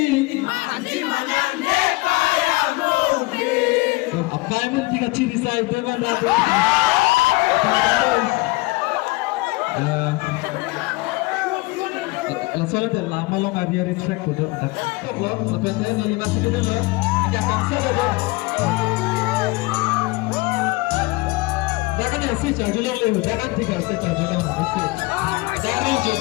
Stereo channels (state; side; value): quieter; right; 23.3 dB